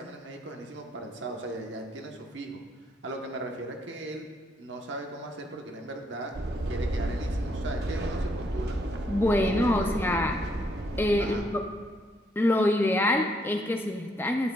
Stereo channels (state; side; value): normal; both; correlation 0.73